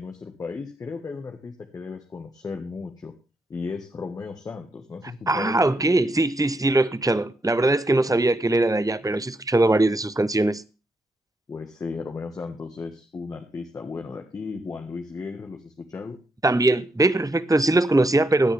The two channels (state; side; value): normal; both; correlation 0.80